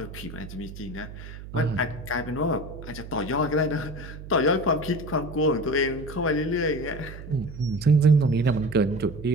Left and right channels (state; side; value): noise; right; hum, 13 dB below the sound